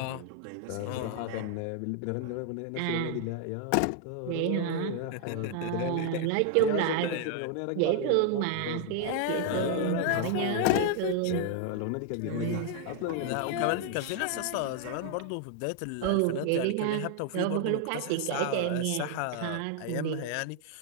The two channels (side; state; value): both; different; correlation 0.00